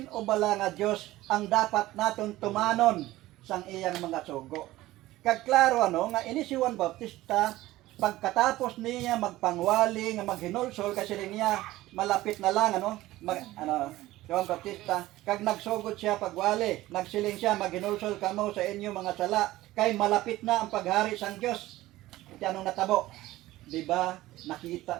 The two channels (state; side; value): quieter; left; 16.9 dB